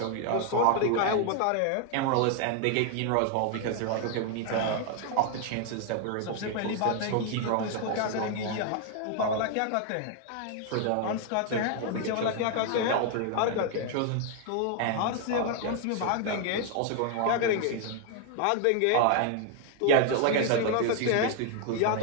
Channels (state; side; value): different; both; correlation 0.00